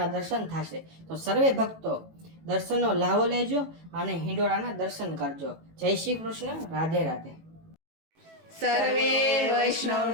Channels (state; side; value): late; left; 18 ms